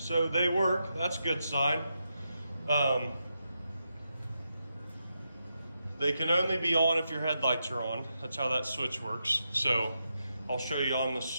they work. That's a good sign. They can only be on if your headlights are on. That's how that switch works. So I'll show you on the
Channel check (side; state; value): both; inverted; correlation -0.85